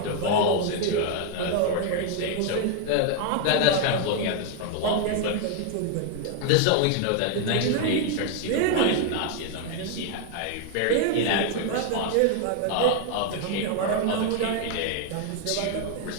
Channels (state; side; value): different; both; correlation 0.01